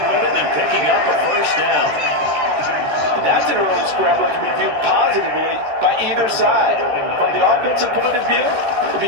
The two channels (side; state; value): left; late; 14 ms